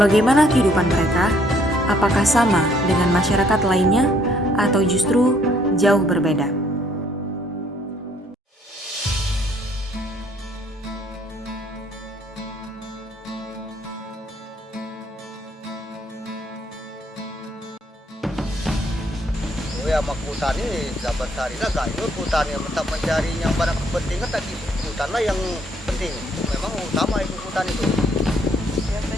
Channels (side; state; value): both; normal; correlation 0.66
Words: Bagaimana kehidupan mereka? Apakah sama dengan masyarakat lainnya atau justru jauh berbeda? Ya mak hutan ini dapat sehari lah gak ikut hutan yang tetap mencari yang barang kepentingan tadi hutan lah yang penting, memang utama itu hutan itu.